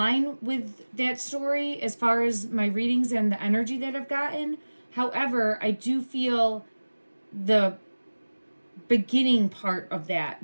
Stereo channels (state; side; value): inverted; both; correlation -1.00